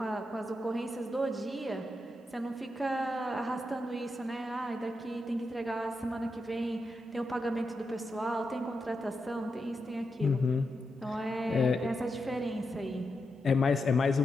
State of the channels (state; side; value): normal; both; correlation 0.86